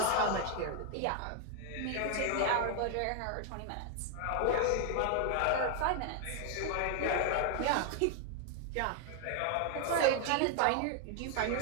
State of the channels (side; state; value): both; different; correlation 0.00